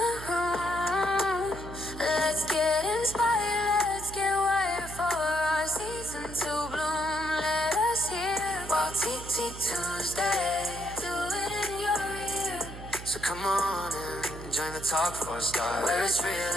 room. Let's get inspired, let's get wired for our season to bloom. Let us hear while Tea Tuesday. Do it in your ear. So come on and join the talk for a start. Where it's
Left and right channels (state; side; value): noise; right; hum, 12 dB below the sound